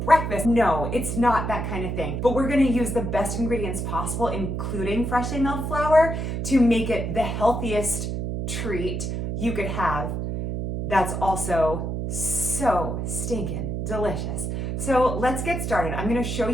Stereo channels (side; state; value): right; noise; hum, 3 dB below the sound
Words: breakfast. No, it's not that kind of thing. But we're gonna use the best ingredients possible, including freshly milled flour, to make it the healthiest treat you could have that's also so stinking delicious. So let's get started. I'm gonna show